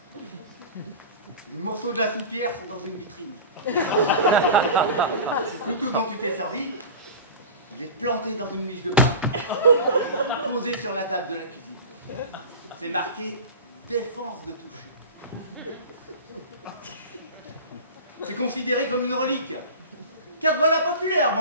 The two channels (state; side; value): inverted; both; correlation -0.31